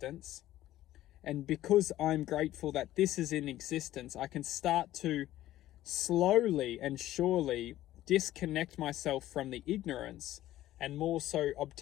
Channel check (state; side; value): quieter; right; 14.3 dB